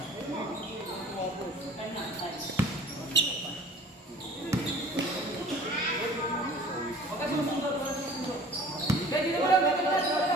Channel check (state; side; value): normal; both; correlation 0.48